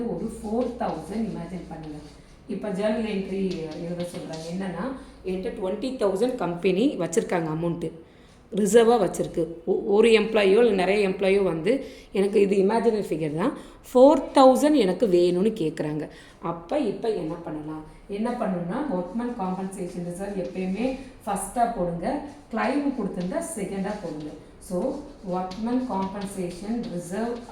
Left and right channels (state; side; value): identical; both; correlation 1.00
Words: ஒரு 4,000 இமேஜின் பண்ணுங்கள். இப்போ ஜேர்னல் என்ட்ரி எழுத சொல்கிறாங்க. என்னென்னா என்கிட்ட 20,000 கம்பெனி வச்சுருக்காங்க, அமௌண்ட்டு ரிசர்வாக வச்சுருக்கு. ஒரு எம்ப்ளாயோ இல்லை நிறைய எம்ப்ளாயோ வந்து எனக்கு இது இமேஜினரி ஃபிகர் தான், 4,000 எனக்கு வேணும்னு கேட்குறாங்க. அப்போ இப்போ என்ன பண்ணணும்னா ஒர்க்மேன் காம்பன்சேஷன் ரிசர்வ் எப்பயுமே ஃபஸ்ட்டாக போடுங்க, கிளைம் கொடுத்துருந்தா செகண்டாக போடுங்க. So workman compensation reserve